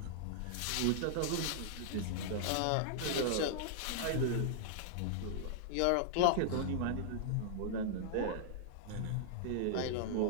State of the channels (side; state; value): both; different; correlation -0.01